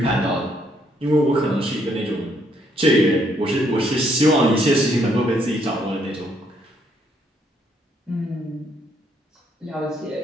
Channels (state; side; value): normal; both; correlation 0.71